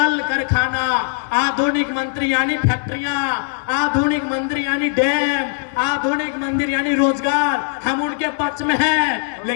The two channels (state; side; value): silent; right; digital silence